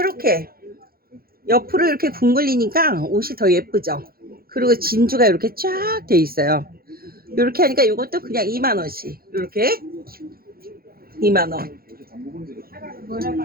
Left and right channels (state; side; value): late; left; 0.44 ms